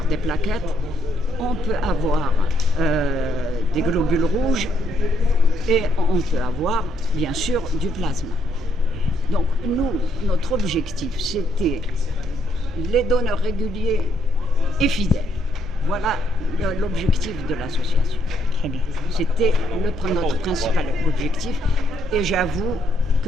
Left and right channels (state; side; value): normal; both; correlation 0.73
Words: des plaquettes, on peut avoir des globules rouges et on peut avoir, bien sûr, du plasma. Donc, nous, notre objectif, c'était les donneurs réguliers et fidèles. Voilà l'objectif de l'association. Très bien. C'était notre principal objectif et j'avoue